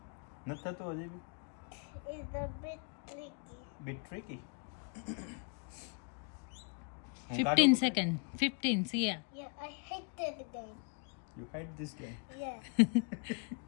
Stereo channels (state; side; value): quieter; right; 35.4 dB